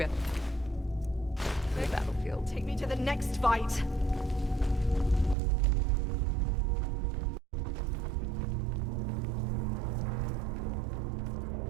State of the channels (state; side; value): drops out; left; at 5.4 s